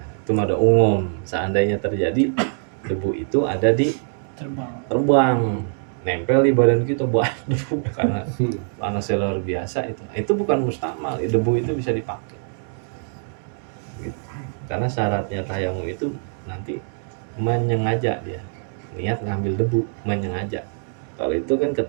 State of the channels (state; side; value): silent; left; 58 dB below the other